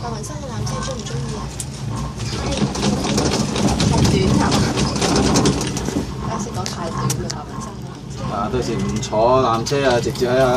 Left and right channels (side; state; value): both; identical; correlation 1.00